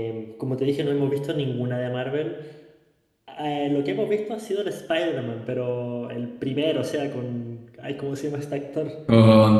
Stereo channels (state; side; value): identical; both; correlation 1.00